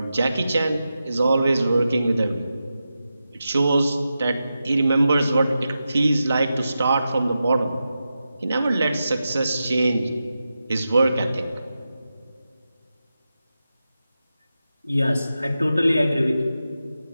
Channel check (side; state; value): both; inverted; correlation -0.90